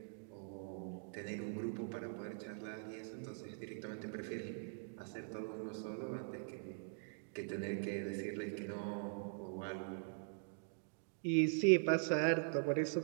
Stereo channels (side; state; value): left; silent; digital silence